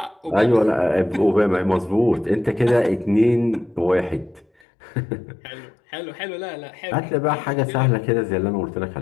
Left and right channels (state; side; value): drops out; right; at 4.5 s